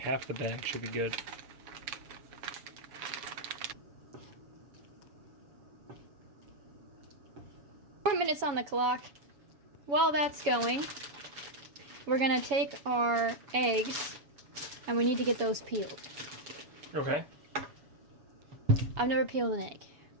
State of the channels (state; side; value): late; left; 7.1 ms